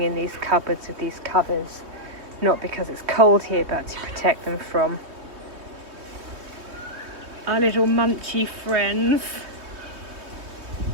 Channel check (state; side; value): late; left; 3.2 ms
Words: in these cupboards with these covers. Not because it's cold here, but to protect them from our little munchy friends.